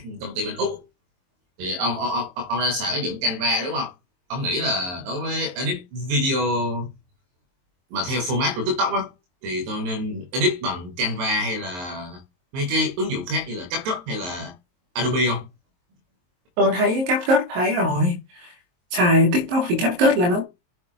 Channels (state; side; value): late; left; 23 ms